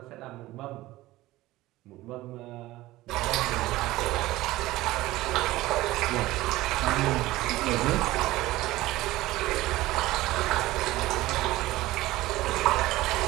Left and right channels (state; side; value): quieter; left; 17.6 dB